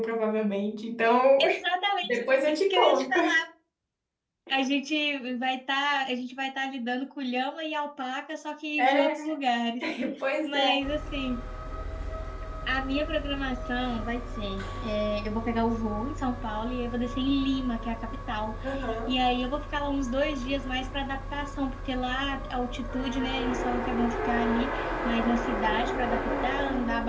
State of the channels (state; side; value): identical; both; correlation 1.00